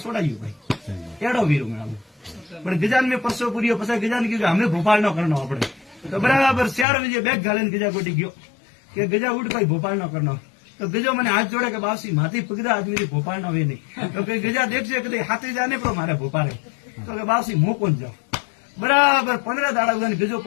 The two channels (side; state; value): right; drops out; at 6.9 s